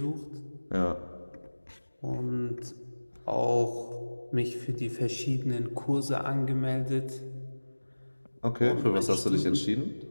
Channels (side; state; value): both; inverted; correlation -1.00